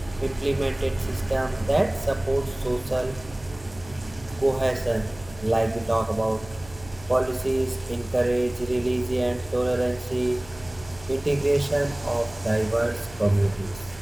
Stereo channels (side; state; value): right; noise; hum, 20 dB below the sound